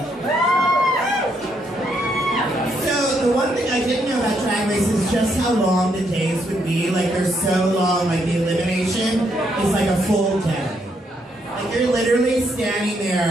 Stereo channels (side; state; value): both; normal; correlation 0.75